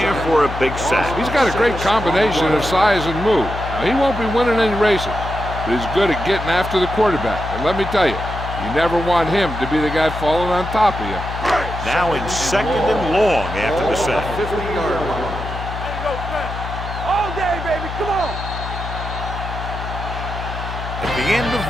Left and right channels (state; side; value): noise; left; hum, 7 dB below the sound